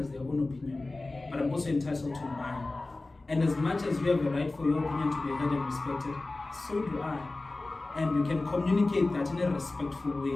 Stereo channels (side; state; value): right; quieter; 3.1 dB